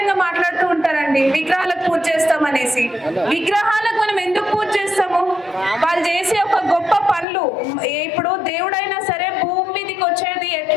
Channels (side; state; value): right; drops out; at 7.2 s